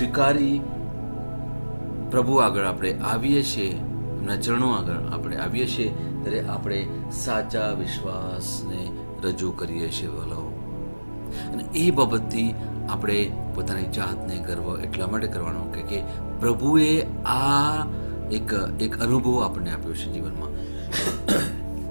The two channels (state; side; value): inverted; both; correlation -1.00